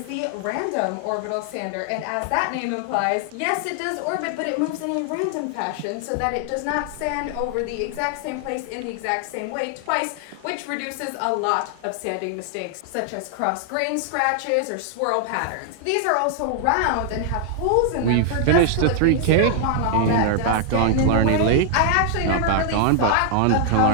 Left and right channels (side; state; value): both; different; correlation 0.00